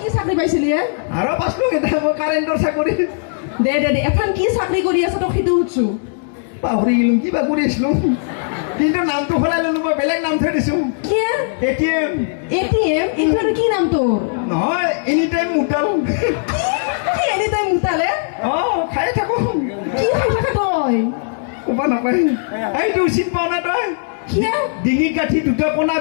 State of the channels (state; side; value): silent; right; digital silence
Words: কি চাকৰি পাইছিলি আৰু পাছলো কেইটা মই কাৰেণ্টৰ চাকৰি দে দে দে এখন কি চাকৰি কৰি আছ তোক সেইটো সুধছো পাহৰি গেলো কিবা কৰি আছিলো কিন্তু নামটো সলাই ললো মই বেলেগ নাম থৈ দিছো কি এটিএম এটিএম এইটো কি নাম তোৰ নহয় এনি টাইম মুটাল কি এনি টাইম মুতালে খাই থাকো কি খাই থাকা তই ক'ব নাপায় এইটো চিন পাৱ না তই কি ডিঙি কাঠি দুটা কোণা